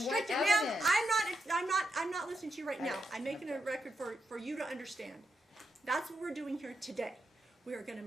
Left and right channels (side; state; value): both; normal; correlation 0.84